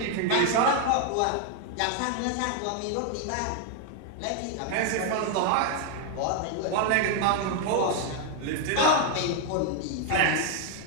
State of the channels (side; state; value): both; different; correlation 0.00